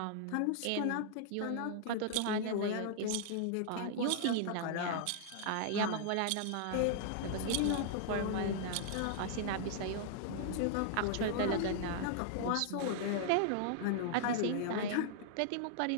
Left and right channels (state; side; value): different; both; correlation -0.01